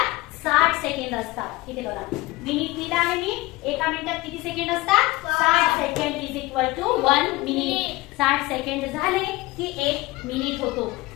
60 सेकंड असतात। इथे बघा मिनिट लिहिलं आहे मी, एका मिनिटात किती सेकंड असतात? 60 second is equal to 1 minute. 60 second झाले की 1 मिनिट होतो।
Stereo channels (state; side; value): quieter; right; 20.5 dB